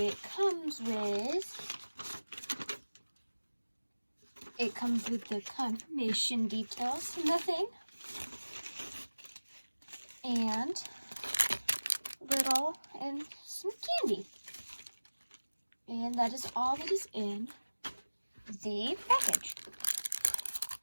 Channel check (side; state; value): both; inverted; correlation -1.00